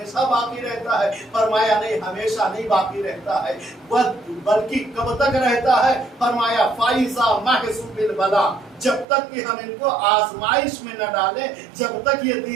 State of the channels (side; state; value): left; drops out; at 9.1 s